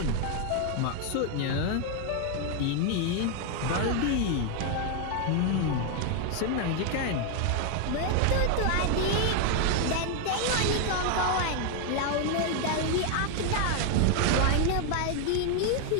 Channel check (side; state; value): both; different; correlation 0.01